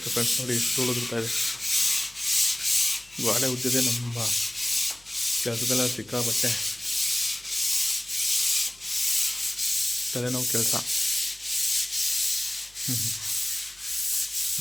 ಫ್ರೆಂಡ್ಸ್. ನೋಡಿ, ಧೂಳು ಉದುರ್ತಾ ಇದೆ. ಗೋಡೆ ಉಜ್ಜಿದೆ ನಮ್ಮ ಕೆಲಸದೆಲ್ಲ ಸಿಕ್ಕಾಬಟ್ಟೆ ತಲೆನೋವು ಕೆಲಸ.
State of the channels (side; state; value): left; noise; hum, 28 dB below the sound